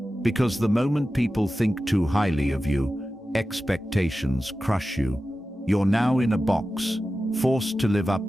Because the moment people think too highly of you, expectations crush you. You're now in a box, forced to live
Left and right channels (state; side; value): normal; both; correlation 0.94